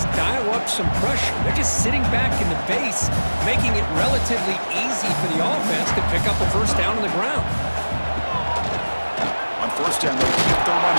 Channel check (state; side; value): inverted; both; correlation -1.00